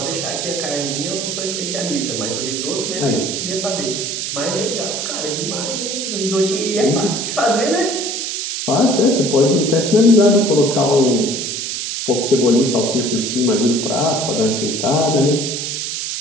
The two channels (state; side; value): noise; right; hiss, 3 dB below the sound